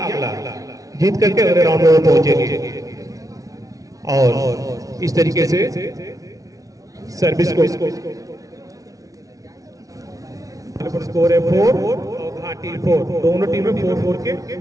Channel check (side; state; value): left; late; 0.17 ms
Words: अगला जीत करके अगले राउंड में पहुंचेंगे। और इस तरीके से सर्विस को स्कोर है 4 और घाटी 4, दोनों टीमें 4-4 के